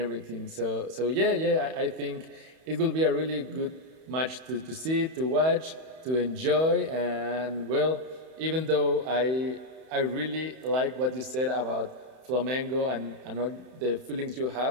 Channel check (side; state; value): left; late; 31 ms